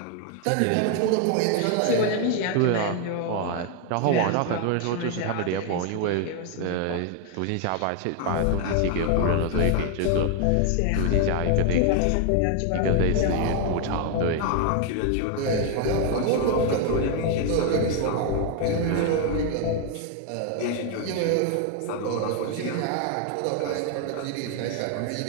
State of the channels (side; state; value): both; different; correlation 0.00